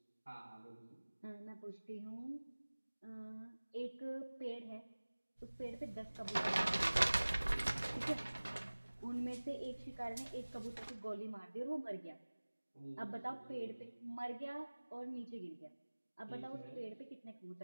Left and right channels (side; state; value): both; inverted; correlation -1.00